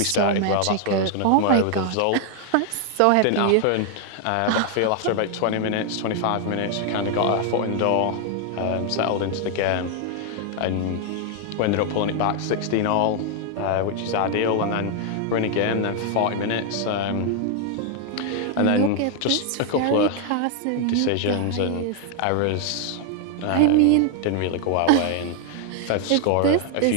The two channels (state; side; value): different; both; correlation 0.00